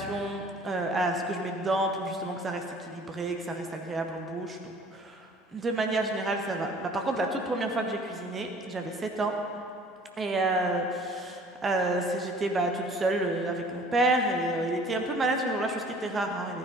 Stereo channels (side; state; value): both; normal; correlation 0.51